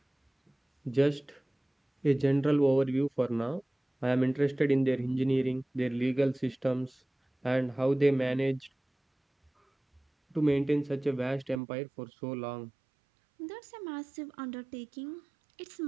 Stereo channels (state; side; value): drops out; left; at 11.6 s